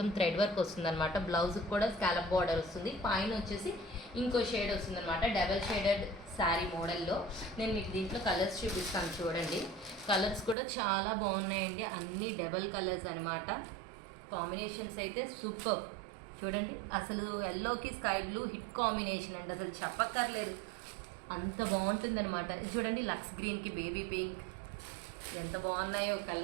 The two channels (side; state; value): left; drops out; at 10.6 s